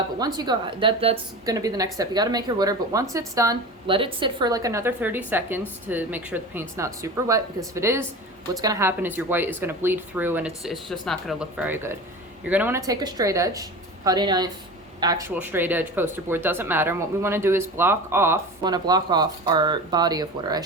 once you go, that's going to be the next step. You got to make your water, but once it's done, let it sit for like another 30 seconds to make sure the paint's not super wet, because if it is, what's going to happen is your white is going to bleed through and it's just not going to look very good. You're going to want to take a straight edge, putty knife, actual straight edge, poster board, doesn't matter. And what we want to do is block off our body of water, I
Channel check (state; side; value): normal; both; correlation 0.32